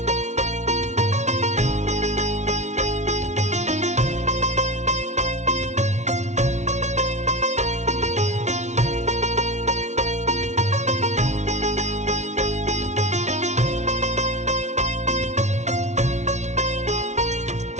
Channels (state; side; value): late; left; 0.33 ms